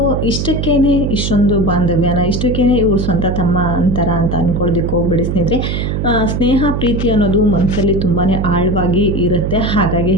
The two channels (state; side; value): noise; right; hum, 1 dB below the sound